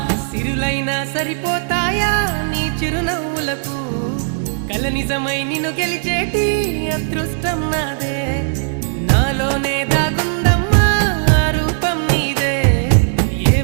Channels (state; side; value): silent; left; digital silence